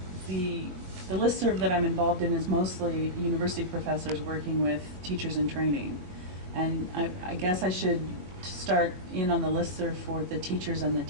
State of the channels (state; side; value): late; left; 22 ms